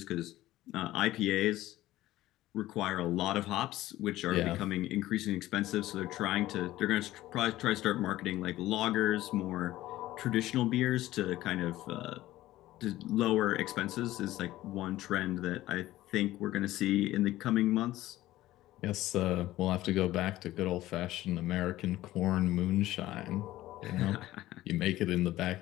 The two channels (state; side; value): quieter; right; 15.7 dB